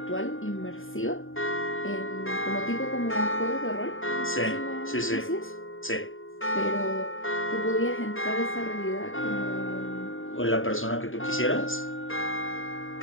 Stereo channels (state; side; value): late; right; 0.59 ms